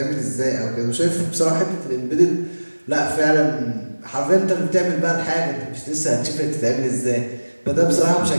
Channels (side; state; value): both; inverted; correlation -1.00